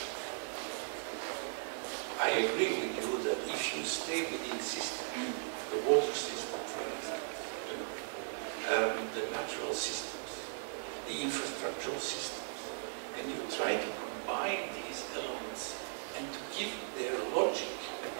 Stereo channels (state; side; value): silent; left; 53 dB below the other